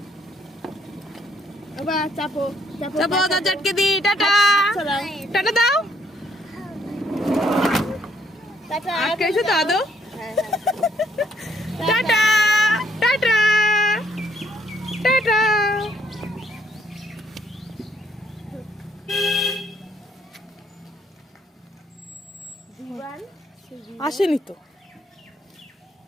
বাবা চাপো চাপো চাপো, দরজা আটকে দি। টাটা টাটা দাও। আটকে এসো তো আদৌ। Tata tata tata. আসেনি তো।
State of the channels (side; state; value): both; normal; correlation 0.68